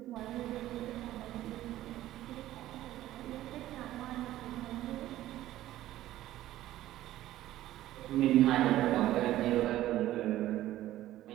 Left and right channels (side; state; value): left; quieter; 14.3 dB